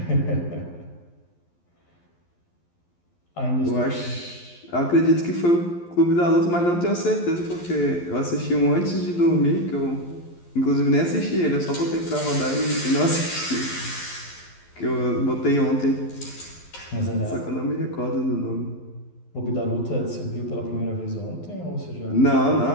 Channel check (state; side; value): late; right; 12 ms